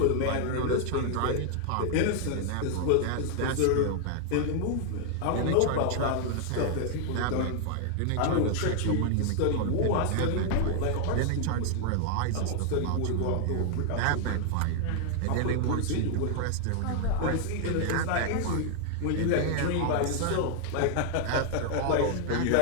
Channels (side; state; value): both; different; correlation 0.00